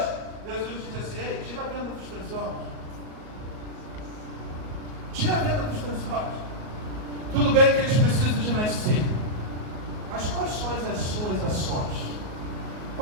Jesus diz assim: ei, tira a venda dos teus olhos. Tira a venda dos teus olhos. Tudo bem que eles precisam de nascer, mas quais são as suas ações?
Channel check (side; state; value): left; late; 38 ms